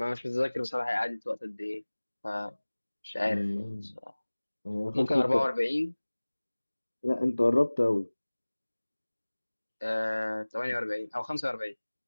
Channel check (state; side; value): inverted; both; correlation -1.00